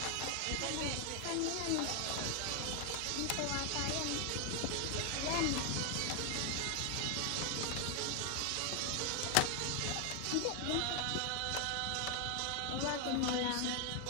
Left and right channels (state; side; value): different; both; correlation 0.00